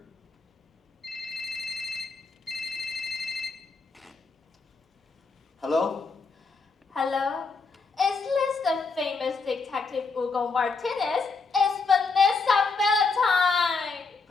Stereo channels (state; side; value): quieter; right; 4.4 dB